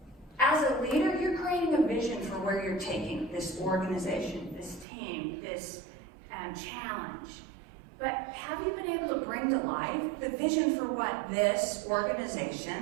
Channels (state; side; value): drops out; left; at 4.9 s